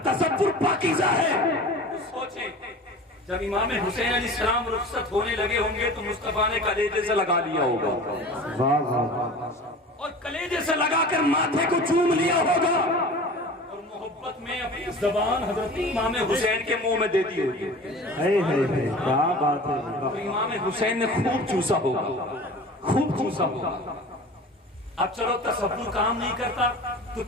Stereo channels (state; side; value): normal; both; correlation 0.38